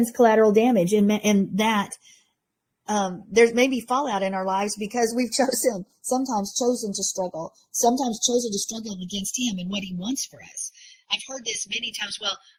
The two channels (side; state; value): both; identical; correlation 1.00